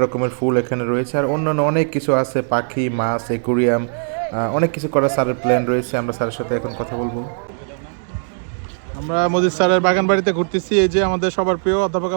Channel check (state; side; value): silent; left; digital silence